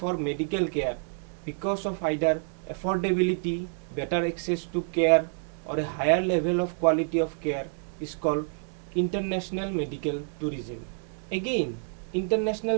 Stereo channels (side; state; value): left; silent; 59 dB below the other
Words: medical care because of either affordability, better access to care or a higher level of quality of care, is called international medical tourism. Again,